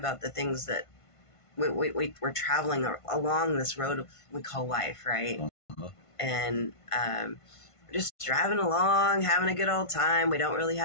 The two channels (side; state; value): right; late; 1.5 ms